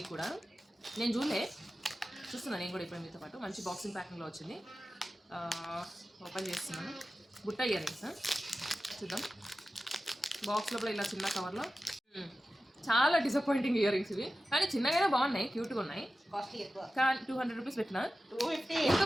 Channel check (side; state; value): both; normal; correlation 0.94